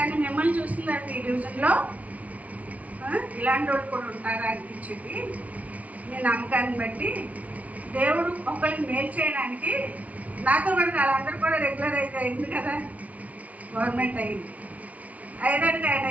మిమ్మల్ని చూసిన తర్వాత ఈ డివిజన్లో ఇలాంటి వాళ్ళు కూడా ఉంటారా అనిపించింది. మీ నమ్మకాన్ని బట్టి దేవుడు ఒకరికి మేలు చేయడానికి నాతో పాటు వాళ్ళందరూ కూడా రెగ్యులరైజ్ అయింది కదా, గవర్నమెంట్ అయింది. అయ్యేదానికి ఆయన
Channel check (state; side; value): late; left; 0.069 ms